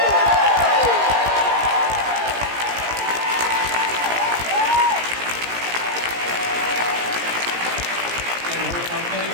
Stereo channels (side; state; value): left; late; 17 ms